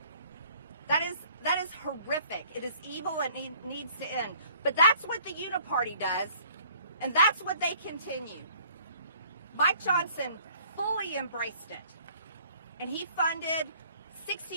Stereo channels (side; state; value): both; inverted; correlation -0.56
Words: That is horrific. It is evil and it needs to end. But that's what the Uniparty does, and that's what they continue. Mike Johnson fully embraced it, and he funded